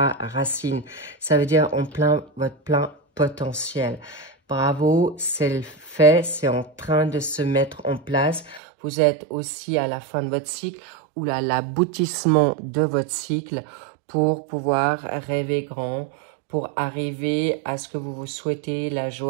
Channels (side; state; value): left; drops out; at 8.6 s